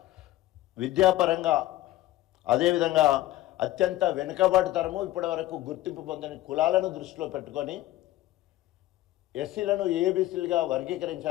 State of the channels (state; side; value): quieter; right; 15.7 dB